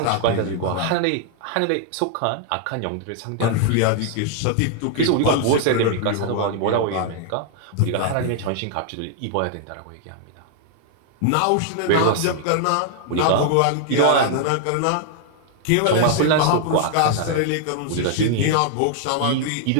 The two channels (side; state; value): both; different; correlation 0.00